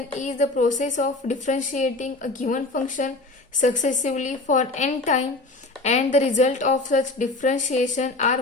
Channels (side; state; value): right; quieter; 3.1 dB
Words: is the process of differentiating a given function successively for n time and the result of such differentiation are